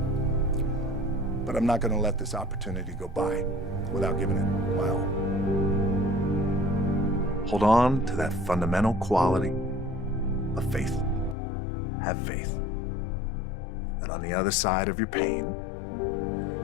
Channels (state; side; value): drops out; right; at 11.4 s